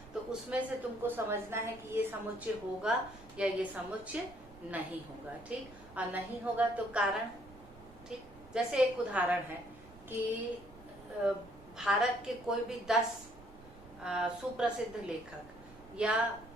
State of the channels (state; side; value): noise; right; rumble, 20 dB below the sound